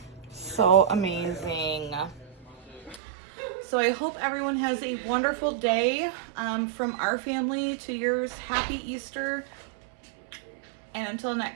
So amazing. So I hope everyone has a wonderful day. From our family to yours, happy Easter. And until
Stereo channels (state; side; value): drops out; left; at 3.0 s